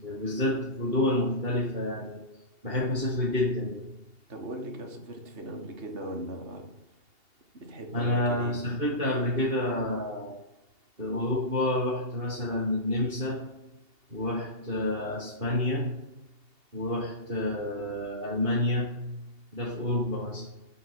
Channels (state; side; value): late; left; 2.8 ms